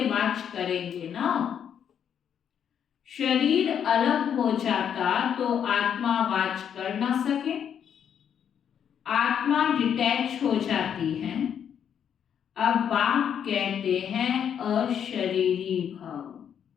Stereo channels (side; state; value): right; quieter; 8.5 dB